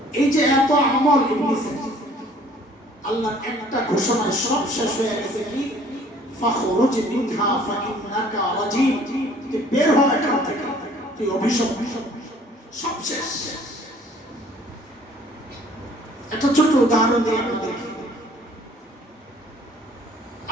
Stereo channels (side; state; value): both; normal; correlation 0.55